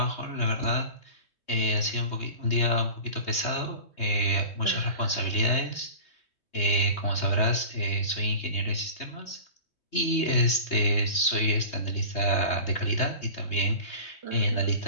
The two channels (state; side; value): late; right; 3.2 ms